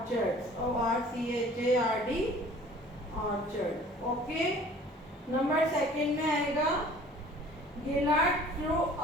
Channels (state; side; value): normal; both; correlation 0.49